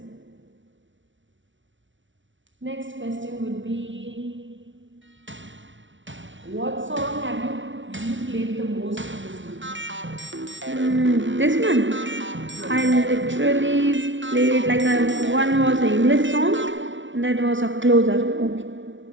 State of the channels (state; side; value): late; left; 0.56 ms